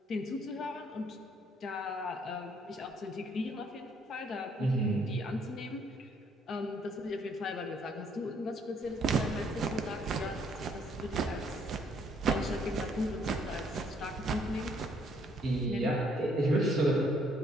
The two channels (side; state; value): both; normal; correlation 0.66